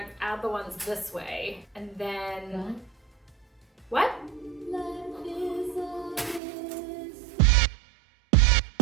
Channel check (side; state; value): left; drops out; at 6.4 s